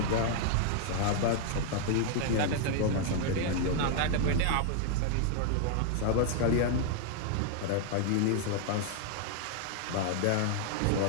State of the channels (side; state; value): both; different; correlation 0.00